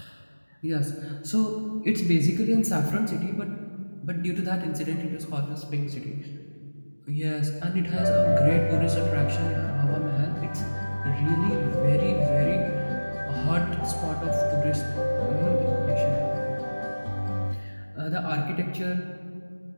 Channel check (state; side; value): inverted; both; correlation -1.00